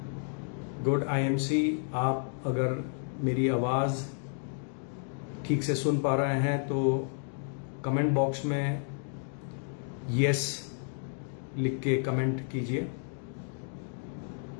Good IMC. आप अगर मेरी आवाज़ ठीक से सुन पा रहे हैं तो कमेंट बॉक्स में यस लिख के कमेंट कीजिए।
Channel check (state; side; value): silent; right; 57 dB below the other